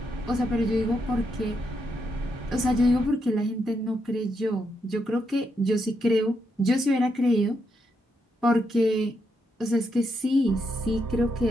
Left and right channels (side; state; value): both; normal; correlation 0.80